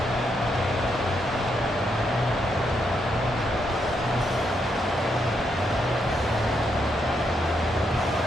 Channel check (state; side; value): normal; both; correlation 0.79